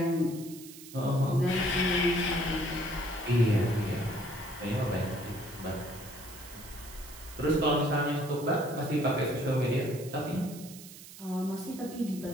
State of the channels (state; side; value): noise; right; hiss, 16 dB below the sound